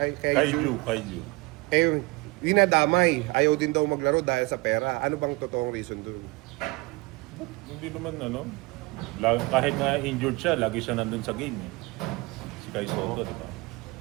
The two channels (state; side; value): quieter; left; 24.3 dB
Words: eh, dinadamay. Ayaw din daw maglaro dahil sa pera. Ano bang totoong reason doon? Hindi naman ano. Kahit nga injured siya, lagi siya nandun sa game eh. Si Kai Soto, diba?